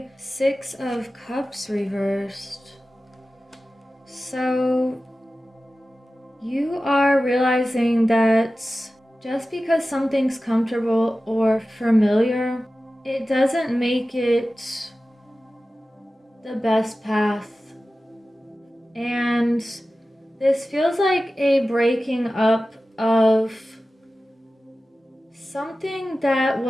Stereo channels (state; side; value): normal; both; correlation 0.95